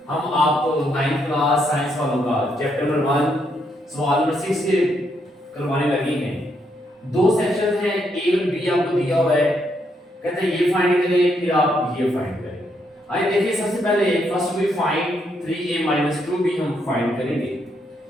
हम आपको 9th क्लास साइंस वालों का चैप्टर नंबर 1 सवाल नंबर 6 के करवाने लगे हैं। दो सेक्शन हैं, ए और बी आपको दिया हुआ है, कहते हैं ये फाइंड करें फिर आप ये फाइंड करें। आइए देखिए, सबसे पहले first we find 3a 2b हम फाइंड करेंगे।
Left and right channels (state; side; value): normal; both; correlation 0.76